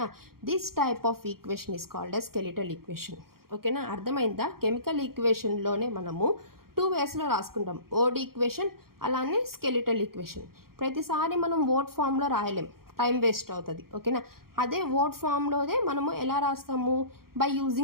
This type of equation is called as skeletal equation. ఓకేనా. అర్థమైందా. కెమికల్ ఈక్వేషన్లోనే మనము 2 వేస్లో రాసుకుంటాం. ఓడ్ ఈక్వేషన్ అలానే స్కెలిటల్ ఈక్వేషన్. ప్రతిసారి మనం వర్డ్ ఫామ్లో రాయలేం, టైం వేస్ట్ అవుతుంది. ఓకేనా. అదే వర్డ్ ఫామ్లోనే మనము ఎలా రాస్తాము బై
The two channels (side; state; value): left; late; 0.93 ms